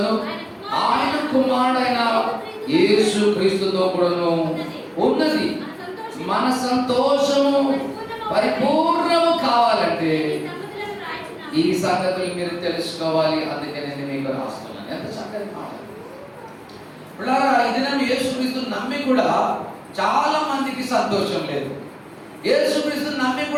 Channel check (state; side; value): identical; both; correlation 1.00